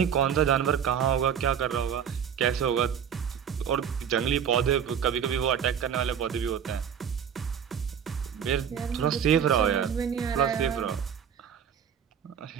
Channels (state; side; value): quieter; left; 8.1 dB